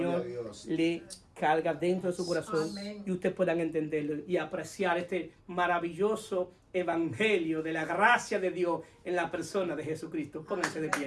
le carga dentro de su corazón. Amén. Y ustedes puedan entenderlo y apreciar este maravilloso evangelio de la gracia de Dios en la persona de Jesucristo. Pónganse de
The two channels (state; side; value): identical; both; correlation 1.00